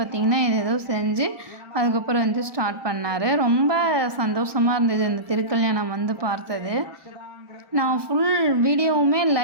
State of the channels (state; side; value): late; left; 1.2 ms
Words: ஏதோ செஞ்சு அதுக்கப்புறம் வந்து ஸ்டார்ட் பண்ணார். ரொம்ப சந்தோஷமாக இருந்தது இந்த திருக்கல்யாணம் வந்து பார்த்தது. நான் ஃபுல் வீடியோவுமே